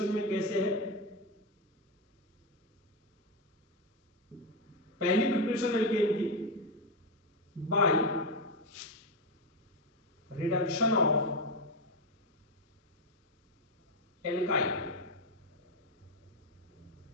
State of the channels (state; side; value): normal; both; correlation 0.08